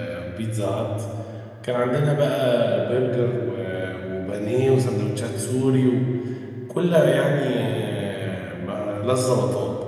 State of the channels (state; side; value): identical; both; correlation 1.00